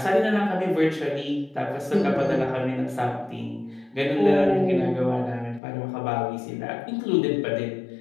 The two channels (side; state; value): right; drops out; at 5.6 s